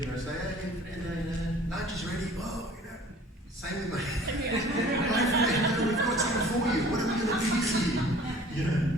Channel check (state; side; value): normal; both; correlation 0.49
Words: say, "Hey, Fernando, lunch is ready." Oh, same with my Fernando, we've got something for you. What are we going to do this year?